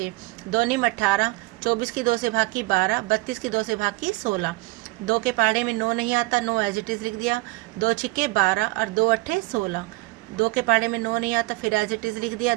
2 निम 18, 24 की 2 से भाग की 12, 32 की 2 से भाग की 16। 2 के पहाड़े में 9 नहीं आता, 9 एज इट इज़ लिख दिया। 2 छिक्के 12 और 2 अट्ठे 16। 2 के पहाड़े में 9 नहीं आता, फिर एज इट इज़ लिख दिया।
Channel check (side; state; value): left; quieter; 22.4 dB